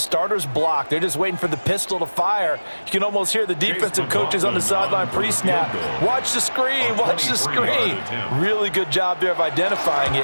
block. They're just waiting for the pistol to fire. You can almost hear the defensive coaches on the sideline pre-snap. Watch the screen, watch the screen. Really good job there of identifying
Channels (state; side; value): inverted; both; correlation -1.00